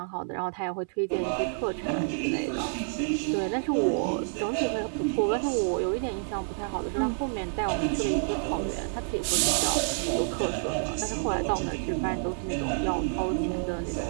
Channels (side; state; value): left; silent; 59 dB below the other